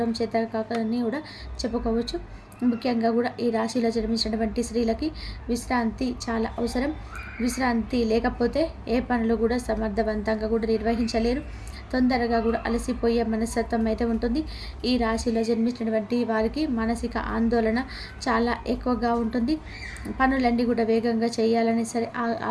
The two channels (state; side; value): identical; both; correlation 1.00